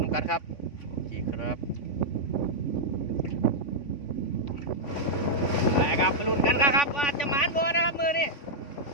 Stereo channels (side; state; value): right; late; 3.5 ms